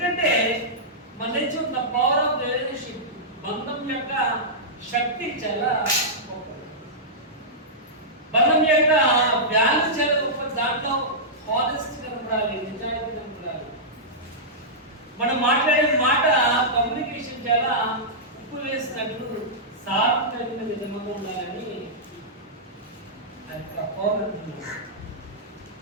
మన నుంచి ఉన్న పవర్ ఆఫ్ రిలేషన్షిప్, బంధం యొక్క శక్తి చాలా గొప్పది. బంధం యొక్క వాల్యూ చాలా గొప్పది. దాంట్లో హానెస్ట్ కనపడాలి, నిజాయితీ కనపడాలి. మనం మాట్లాడే మాట కమ్యూనికేషన్ చాలా ఉప్పు వేసినట్లు సారం కలిగిన విధంగా ఉండాలని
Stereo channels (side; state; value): both; normal; correlation -0.13